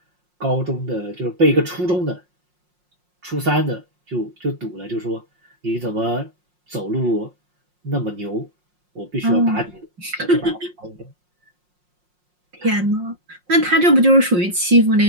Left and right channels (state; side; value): late; left; 5.6 ms